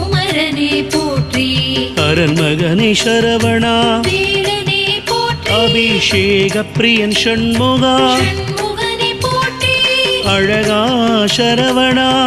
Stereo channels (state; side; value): identical; both; correlation 1.00